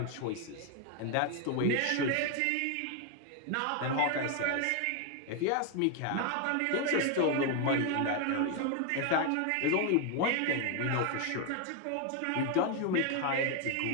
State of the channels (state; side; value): different; both; correlation 0.01